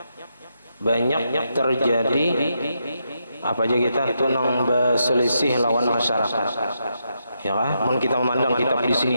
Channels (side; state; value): both; inverted; correlation -0.82